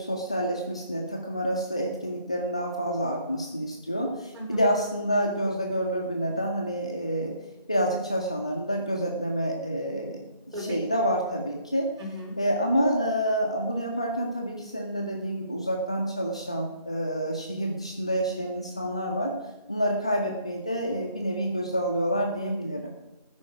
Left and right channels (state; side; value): inverted; both; correlation -0.65